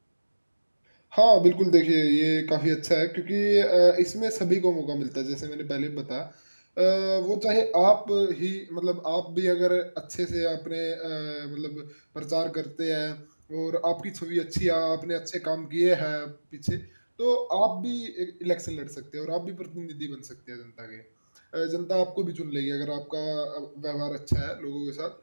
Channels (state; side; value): inverted; both; correlation -1.00